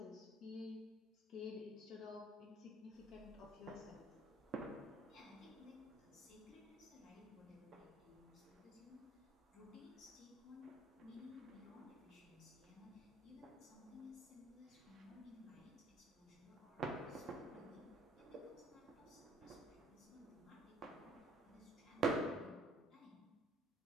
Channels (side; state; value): both; normal; correlation 0.58